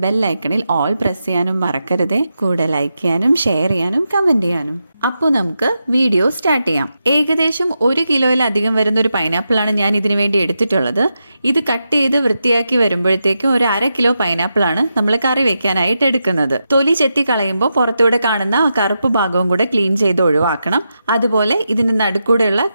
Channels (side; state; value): both; inverted; correlation -0.87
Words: ബെല്ലൈക്കണിൽ ഓൾ പ്രസ് ചെയ്യാനും മറക്കരുതേ. കൂടെ ലൈക്ക് ചെയ്യാനും ഷെയർ ചെയ്യാനും കമൻറ്റ് ചെയ്യാനും. അപ്പോൾ നമുക്ക് വീഡിയോ സ്റ്റാർട്ട് ചെയ്യാം. ഏകദേശം 1 കിലോയിലധികം വരുന്ന ഒരു പൈനാപ്പിളാണ് ഞാൻ ഇതിനു വേണ്ടി എടുത്തിട്ടുള്ളത്. ഇത് കട്ട് ചെയ്ത് വൃത്തിയാക്കി വരുമ്പോഴത്തേക്കും ഒരു 1/2 കിലോ പൈനാപ്പിളാണ് നമ്മൾ കറി വെക്കാനായിട്ട് എടുക്കുന്നത്. തൊലി ചെത്തി കളയുമ്പോൾ പുറത്തൂടെ കാണുന്ന ആ കറുപ്പ് ഭാഗവും കൂടെ ക്ലീൻ ചെയ്ത് ഒഴിവാക്കണം. അതുപോലെ ഇതിന് നടുക്കൂടെയുള്ള